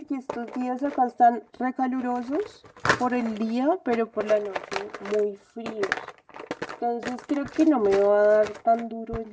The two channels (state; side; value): identical; both; correlation 1.00